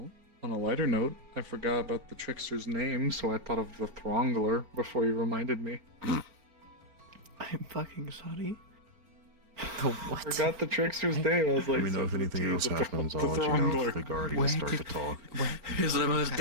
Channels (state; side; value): late; left; 4.4 ms